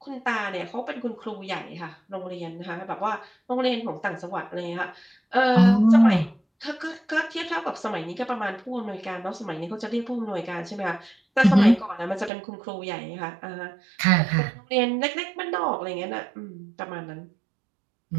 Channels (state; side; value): drops out; left; at 12.3 s